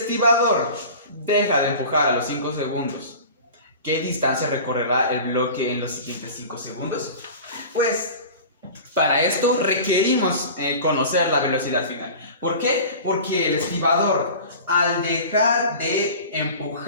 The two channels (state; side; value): inverted; both; correlation -0.37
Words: deja de empujar a los 5 segundos, ¿qué distancia recorrerá el bloque en los siguientes 5 segundos? Pues para esto requerimos conocer la velocidad final. ¿Por qué? Porque el estibador, al dejar de